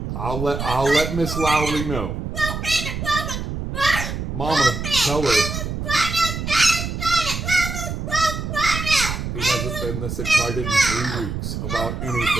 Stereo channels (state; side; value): noise; right; rumble, 4 dB below the sound